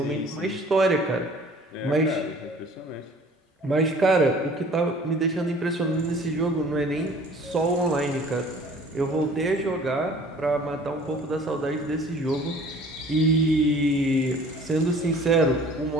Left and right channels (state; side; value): normal; both; correlation 0.50